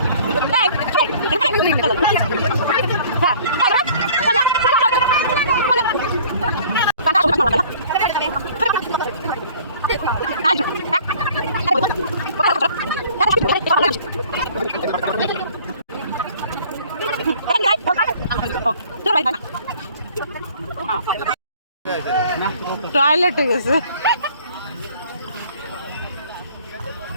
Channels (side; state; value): both; inverted; correlation -0.52